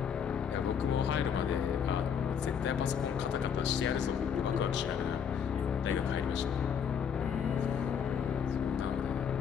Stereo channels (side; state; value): right; quieter; 7.5 dB